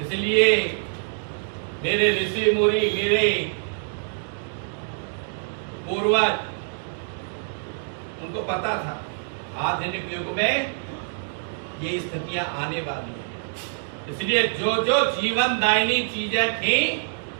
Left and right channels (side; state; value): left; silent; digital silence